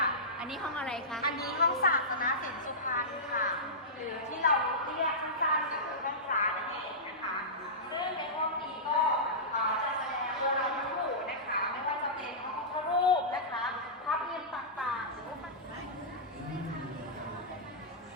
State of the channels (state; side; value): normal; both; correlation -0.17